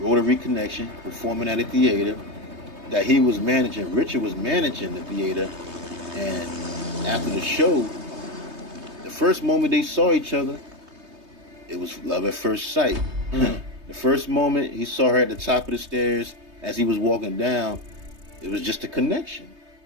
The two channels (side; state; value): left; late; 3.2 ms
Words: Connection, performing at a theater that he was managing. Richard was managing the theater, and after the show, the first moment they saw each other, it was love at first sight. The first moment he saw her at the top of the stairs as he was walking down, it was just a connection.